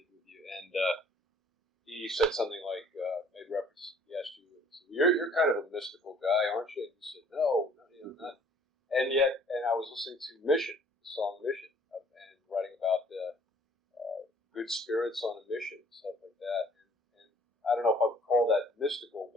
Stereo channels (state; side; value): normal; both; correlation 0.57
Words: with you, and he said something like, made reference. He asked you, "You're kind of a mystical guy, aren't you?" And you said, "No, not." And I was listening to Mission, the song Mission, and writing about the good spirits on a mission, stuff like that. And I don't know if I would call that mystical,